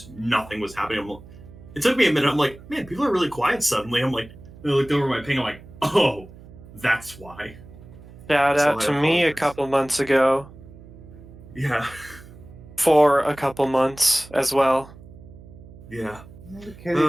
nothing was happening. It took me a minute. I'm like, man, people are really quiet suddenly. I'm like, I looked over my ping. I'm like, oh, that's why. Shout So out I to me a apologize. couple months ago Yeah, for a couple months as well. yeah. The kid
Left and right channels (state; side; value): noise; right; hum, 19 dB below the sound